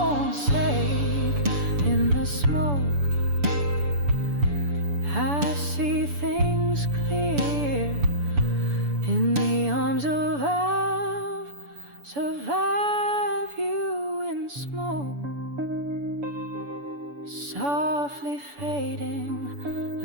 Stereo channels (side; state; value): left; late; 7.0 ms